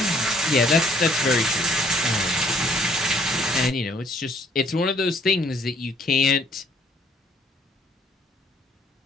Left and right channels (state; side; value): normal; both; correlation 0.62